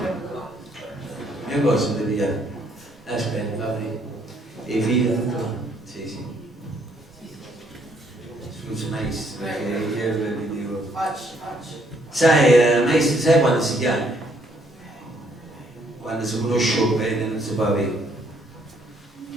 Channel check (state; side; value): normal; both; correlation 0.68